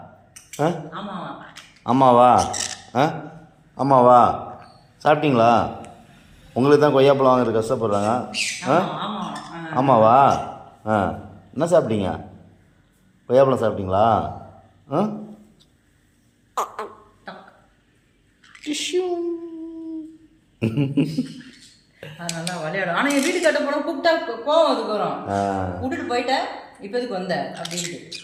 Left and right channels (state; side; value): identical; both; correlation 1.00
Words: ஆமாவா? ஆமாவா? சாப்பிட்டீங்களா? உங்களுக்கு தான் கொய்யாப்பழம் வாங்குறது கஷ்டப்படுறாங்க. ஆமாவா? என்ன சாப்பிட்டீங்க? கொய்யாப்பழம் சாப்பிட்டீங்களா? நல்லா விளையாடும். ஆனால் என் வீட்டு கட்ட போனால் கூப்பிட்டா கோவம் அதுக்கு வரும். விட்டுட்டு போயிட்டேன், இப்போ எதுக்கு வந்த அப்படின்ட்டு